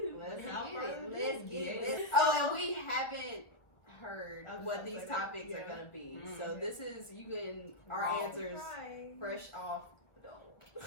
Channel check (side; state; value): right; late; 1.2 ms